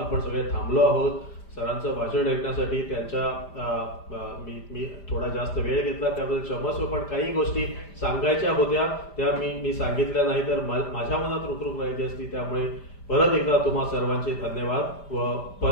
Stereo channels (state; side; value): late; right; 5.0 ms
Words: सगळे थांबलो आहोत सरांचं भाषण ऐकण्यासाठी. त्यांच्या मी थोडा जास्त वेळ घेतला त्याबद्दल क्षमस्व, पण काही गोष्टी सांगायच्या होत्या त्या मी सांगितल्या नाही तर माझ्या मनात रुखरुख राहिली असती. त्यामुळे परत एकदा तुम्हा सर्वांचे धन्यवाद. व